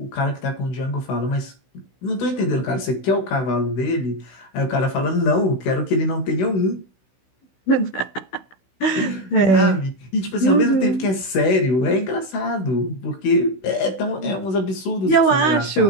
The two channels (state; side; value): late; right; 16 ms